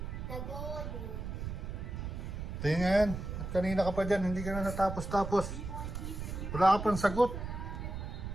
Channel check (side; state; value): right; noise; rumble, 6 dB below the sound